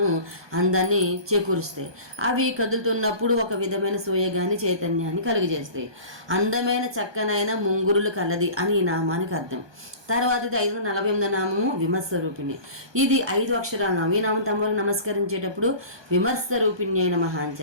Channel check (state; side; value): late; left; 1.2 ms